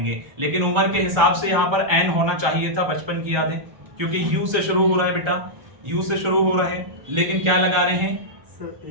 लेकिन उम्र के हिसाब से यहां पर एन होना चाहिए था, बचपन की यादें, क्योंकि यू से शुरू हो रहा है बेटा, यू से शुरू हो रहा है, लेकिन क्या लगा रहे हैं,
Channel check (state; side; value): late; left; 1.3 ms